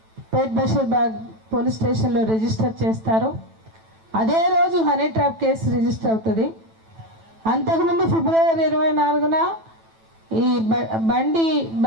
పేట్ బషీర్బాగ్ పోలీస్ స్టేషన్లో రిజిస్టర్ చేస్తారు. అదే రోజు హనీ ట్రాప్ కేసు రిజిస్టర్ అవుతుంది. అంతకుముందు ఫిబ్రవరి 24న ఈ బండి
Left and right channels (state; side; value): late; left; 9.1 ms